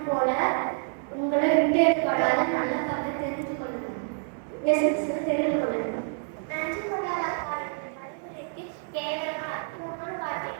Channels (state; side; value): silent; left; 60 dB below the other